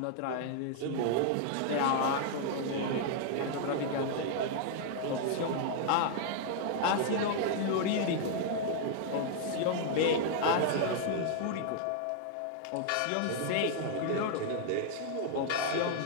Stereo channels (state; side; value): different; both; correlation 0.00